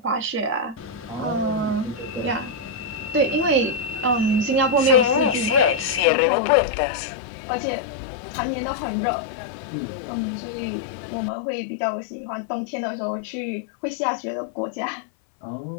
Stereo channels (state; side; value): drops out; right; at 6.1 s